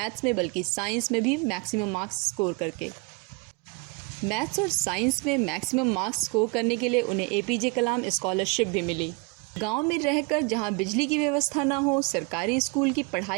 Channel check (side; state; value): left; quieter; 30.7 dB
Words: में बल्कि साइंस में भी मैक्सिमम मार्क्स स्कोर करके। मैथ्स और साइंस में मैक्सिमम मार्क्स स्कोर करने के लिए उन्हें एपीजे कलाम स्कॉलरशिप भी मिली। गांव में रहकर जहां बिजली की व्यवस्था ना हो, सरकारी स्कूल की